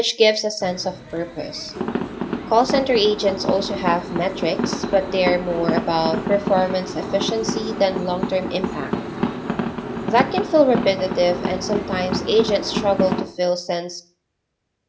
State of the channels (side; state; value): both; identical; correlation 1.00